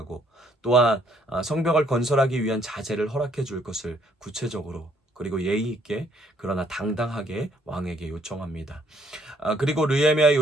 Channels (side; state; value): both; normal; correlation 0.66